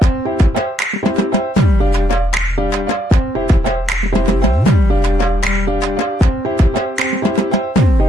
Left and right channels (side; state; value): both; normal; correlation 0.75